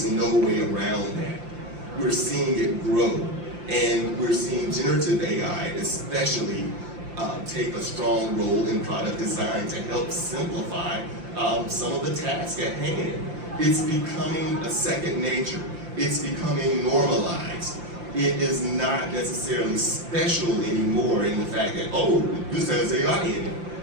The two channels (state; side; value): late; left; 5.7 ms